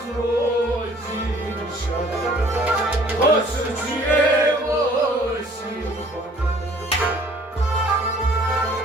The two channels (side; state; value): both; normal; correlation 0.55